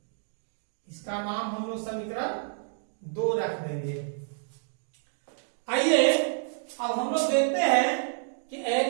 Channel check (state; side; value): silent; left; digital silence